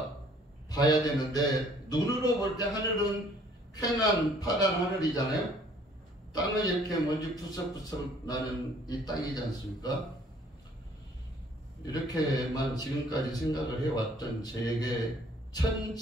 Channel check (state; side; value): normal; both; correlation 0.58